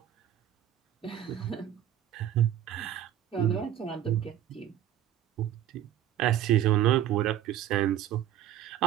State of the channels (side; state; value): left; quieter; 11.3 dB